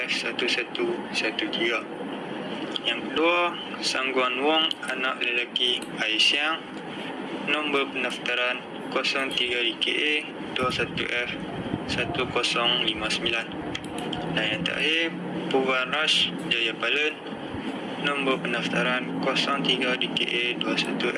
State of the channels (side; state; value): both; identical; correlation 1.00